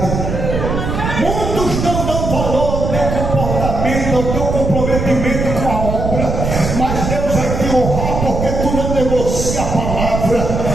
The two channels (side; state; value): right; noise; rumble, 3 dB below the sound